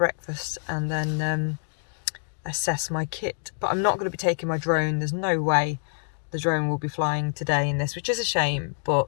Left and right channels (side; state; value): right; silent; digital silence